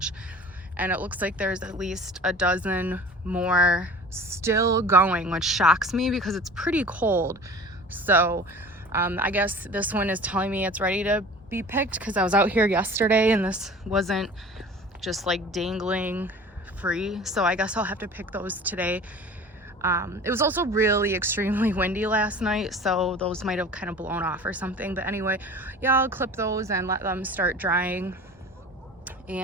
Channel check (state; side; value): normal; both; correlation 0.41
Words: and it looks like there's at least a dozen more still going, which shocks me because it's pretty cold. So I guess this one is telling me it's ready to be picked, because I was out here yesterday and this wasn't just like dangling free. So I guess I'll have to pick those today. It was also really extremely windy last night, so those might have kind of blown off or something. But anyway, yeah, I'll clip those and let them start drying.